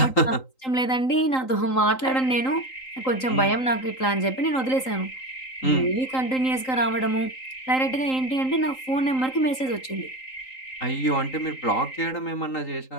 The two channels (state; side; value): late; right; 3.8 ms